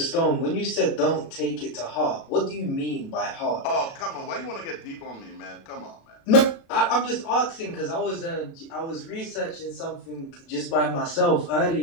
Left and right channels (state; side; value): late; right; 36 ms